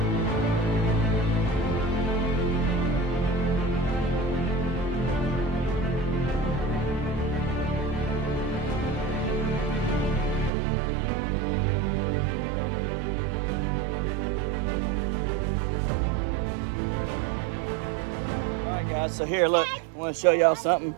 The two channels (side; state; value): left; drops out; at 10.5 s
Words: So here, look, I want to show y'all something.